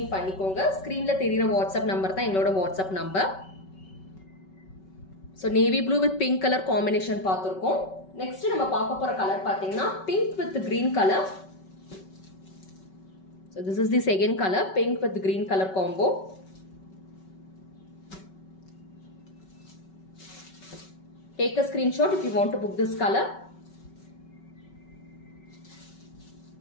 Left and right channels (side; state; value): right; late; 5.3 ms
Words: பண்ணிக்கோங்க. ஸ்கிரீன்ல தெரியுற WhatsApp நம்பர் தான் எங்களோட WhatsApp number. So navy blue with pink color combination பார்த்திருக்கோம். Next நம்ம பார்க்க போற கலர் பாத்தீங்கன்னா pink with green color. So this is the second color, pink with green color combo. Take a screenshot if you want to book this color.